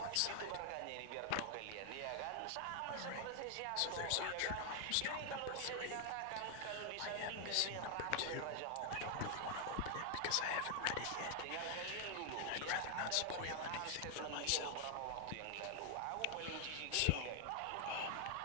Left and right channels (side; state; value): both; different; correlation 0.00